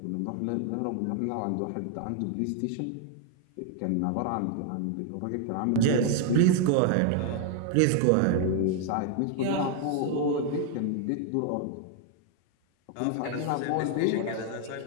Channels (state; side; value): different; both; correlation 0.00